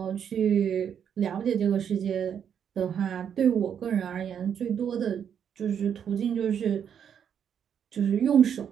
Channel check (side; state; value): left; quieter; 8.2 dB